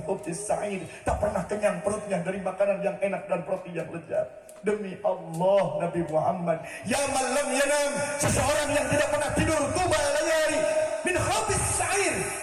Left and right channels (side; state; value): both; identical; correlation 1.00